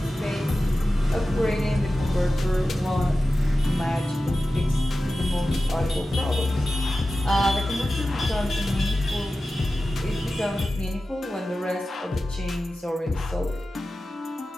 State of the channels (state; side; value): normal; both; correlation 0.94